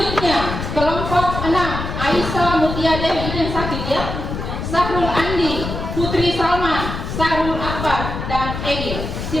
kelompok 6 Aisyah Mutiadewi, ini yang sakit ya, Sahrul Andi, Putri Salman, Sarul Akbar, dan Egil.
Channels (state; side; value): noise; left; rumble, 5 dB below the sound